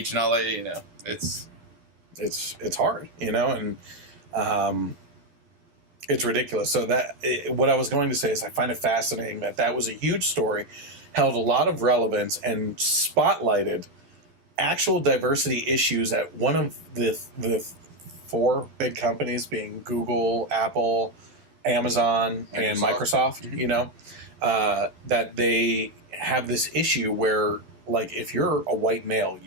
and all that. You know, it's hard, you know, and it's ridiculous. So what I was going to say is I find it fascinating that was a huge story, held a lot of relevance, and spotlighted actual diversity issues at one of the 4 big companies, being Google, Apple, Amazon, and Microsoft, you know, that they have this issue where, like, if you're a white male,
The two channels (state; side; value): late; left; 12 ms